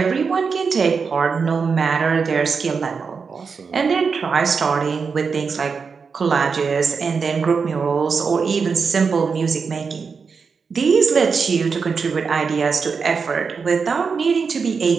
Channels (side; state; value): left; quieter; 5.4 dB